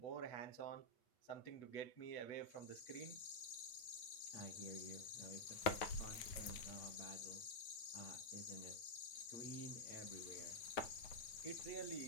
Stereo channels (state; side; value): late; right; 9.2 ms